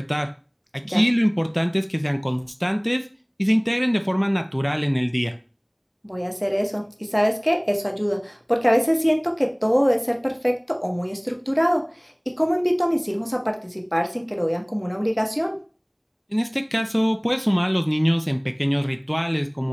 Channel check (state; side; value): identical; both; correlation 1.00